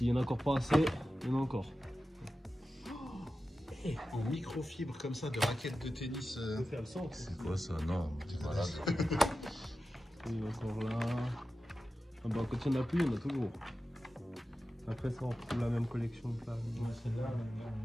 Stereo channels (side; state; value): both; normal; correlation 0.93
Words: y en a encore pas assez, il y en a encore. En microfibre comme ça, de raquettes de tennis. On peut faire le centre. C'est quoi ça? Non, t'es malade. Il y en a encore là. Ah bah, quand il n'y en a plus, il y en a toujours. Après ça, on retrouve la même collection que là. Celle-là,